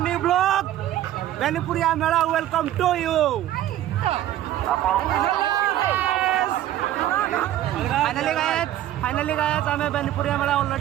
vlog. Benpuri Mela, welcome to you. Finally guys, ଆମେ ବେନିପୁରିଆ ମେଳା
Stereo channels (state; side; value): quieter; left; 13.0 dB